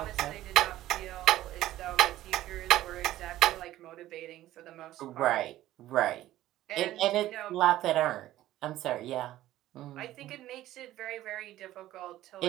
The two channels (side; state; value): left; quieter; 14.5 dB